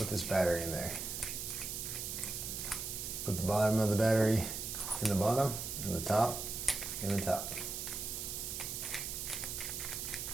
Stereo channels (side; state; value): right; noise; hiss, 4 dB below the sound